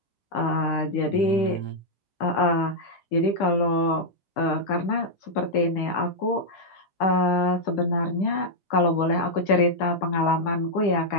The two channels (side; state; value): right; late; 10 ms